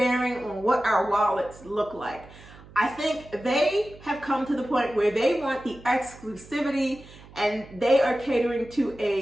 on what our wallets look like. I think they have come to the point where they want the exclusivity and they are catering to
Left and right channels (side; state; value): right; noise; hum, 21 dB below the sound